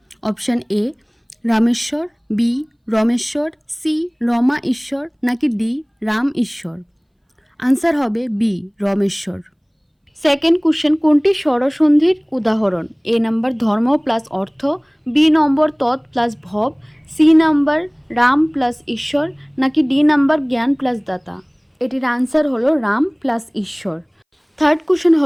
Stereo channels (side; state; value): both; identical; correlation 1.00